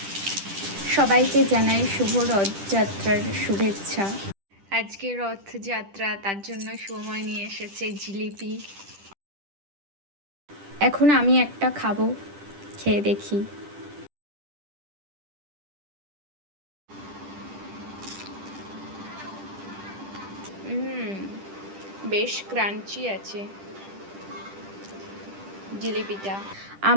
সবাইকে জানাই শুভ রথযাত্রার শুভেচ্ছা। আজকে রথযাত্রা, তার জন্য সময় নিয়ে এসেছে জিলিপি। এখন আমি একটা খাবো, খেয়ে দেখি। বেশ ক্রাঞ্চি আছে জিলিপিটা।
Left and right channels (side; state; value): left; late; 10 ms